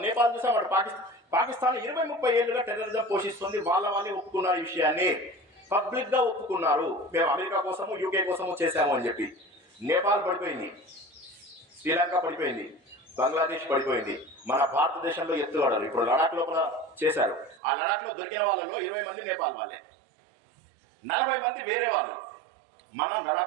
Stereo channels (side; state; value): left; drops out; at 17.6 s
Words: నేపాల్ చూసాం, అటు పాకిస్తాన్ 20-30 ఏళ్ళుగా టెర్రరిజం పోషిస్తుంది. వాళ్ళే ఒప్పుకున్నారు ఈ విషయాన్ని, పబ్లిక్ గా ఒప్పుకున్నారు. మేము అమెరికా కోసము యూకే కోసము చేశాము అని చెప్పి. నేపాల్ పడిపోయింది, శ్రీలంక పడిపోయింది, బంగ్లాదేశ్ పడిపోయింది. మన భారతదేశంలో ఎత్తుగడలు ఇప్పుడు లడాక్ లోపల చేశారు. ఆ లడాక్ లో దొరికిన వాళ్ళలో 20 మంది నేపాల్ వాళ్ళే, 40 మంది వేరే వాళ్ళు. మన